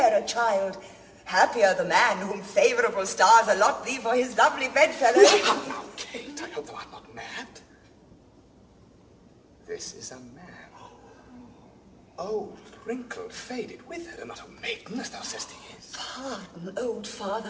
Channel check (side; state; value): both; identical; correlation 1.00